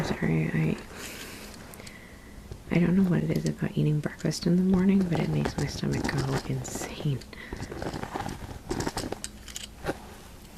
sorry, I don't know what it is about eating breakfast in the morning, but it makes my stomach go insane.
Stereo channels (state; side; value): identical; both; correlation 1.00